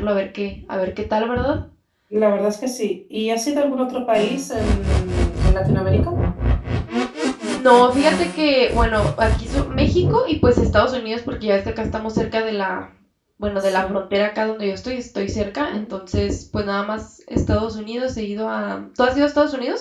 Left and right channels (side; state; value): both; identical; correlation 1.00